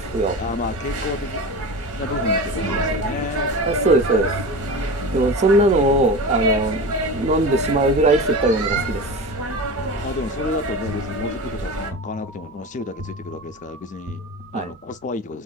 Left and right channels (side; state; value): both; normal; correlation 0.29